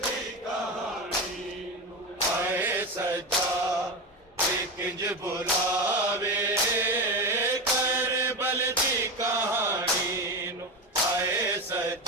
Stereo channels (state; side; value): normal; both; correlation 0.19